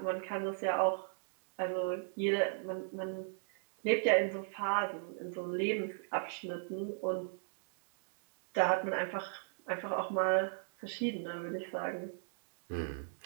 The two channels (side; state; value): left; silent; digital silence